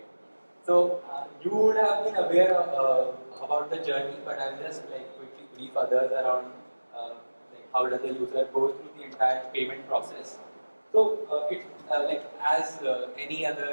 So you would have been aware about the journey, but I'll just like quickly brief others around like how does the user go through the entire payment process. So it like as any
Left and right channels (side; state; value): both; inverted; correlation -1.00